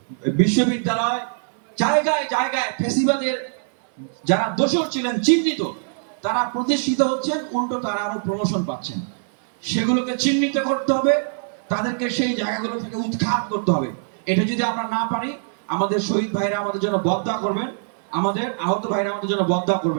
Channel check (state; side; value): silent; left; 58 dB below the other